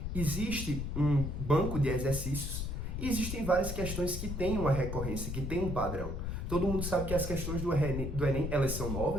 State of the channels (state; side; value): noise; left; rumble, 3 dB below the sound